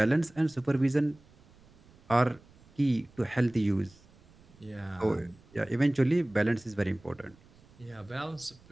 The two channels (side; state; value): right; noise; rumble, 27 dB below the sound